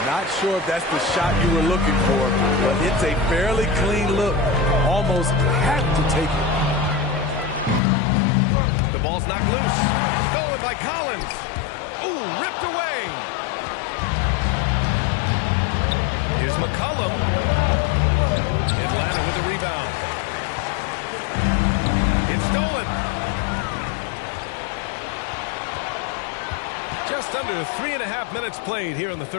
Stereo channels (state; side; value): drops out; right; at 7.8 s